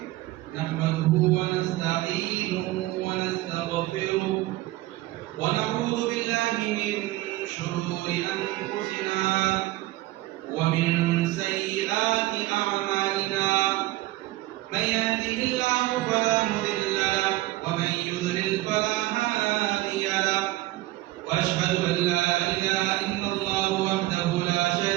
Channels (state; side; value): quieter; left; 17.7 dB